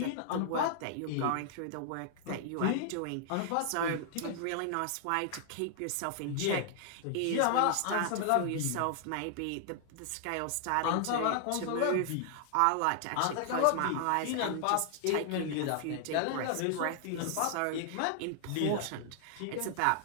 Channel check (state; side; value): different; both; correlation -0.01